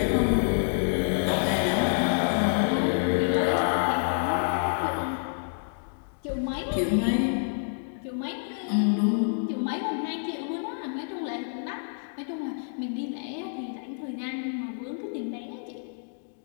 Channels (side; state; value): right; silent; digital silence